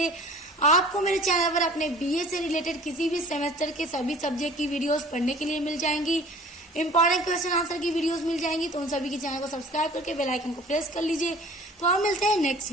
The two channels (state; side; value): normal; both; correlation 0.47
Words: आपको मेरे चैनल पर अपने बीए से रिलेटेड किसी भी सेमेस्टर के सभी सब्जेक्ट की वीडियोस पढ़ने के लिए मिल जाएंगी, इंपॉर्टेंट क्वेश्चन आंसर की वीडियोस मिल जाएंगी। तो उन सभी के चैनल को सब्सक्राइब करके बेल आइकन को प्रेस कर लीजिए। तो आप मिलते हैं नेक्स्ट